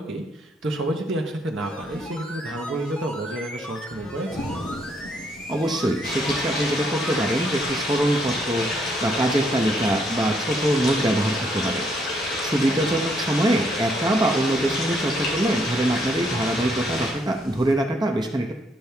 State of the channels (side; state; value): both; normal; correlation 0.72